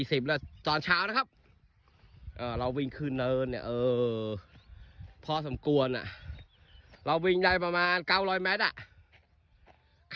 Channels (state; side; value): identical; both; correlation 1.00